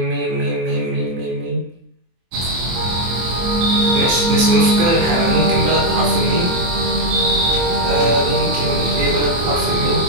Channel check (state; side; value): late; left; 23 ms